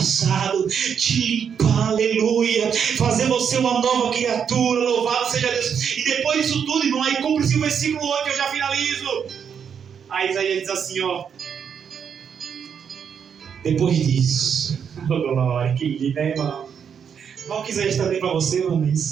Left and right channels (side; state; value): left; quieter; 7.4 dB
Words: te limpar, aleluia, fazer você uma nova criatura. Louvado seja Deus. E depois disso tudo, irmão, aí cumpre-se o versículo 8, eu já finalizo. Aí Isaías diz assim, ó: depois disso, glória, que lindo, né, irmão? Não que Isaías está bem para você, irmão,